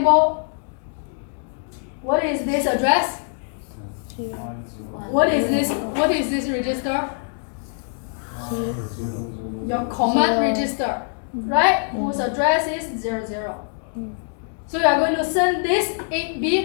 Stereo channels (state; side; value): silent; right; 57 dB below the other